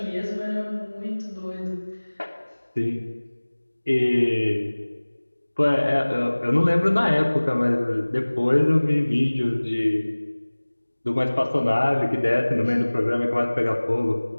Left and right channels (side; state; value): both; inverted; correlation -1.00